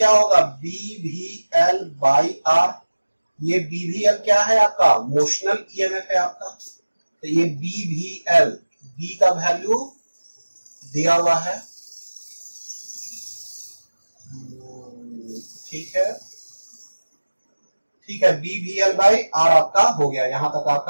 होगा? BVL by R. ये BVL क्या है आपका? मोशनल EMF है आपका. तो ये BVL, B का वैल्यू दिया हुआ है. ठीक है. ठीक है. BVL बाई R आपका हो गया. यहां तक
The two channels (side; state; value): both; inverted; correlation -1.00